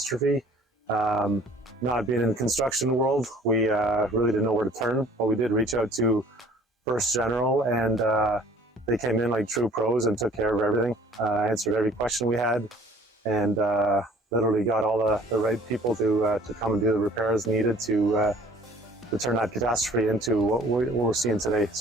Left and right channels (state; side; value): normal; both; correlation 0.52